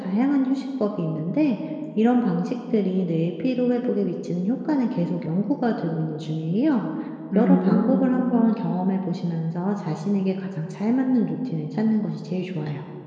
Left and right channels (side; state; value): both; identical; correlation 1.00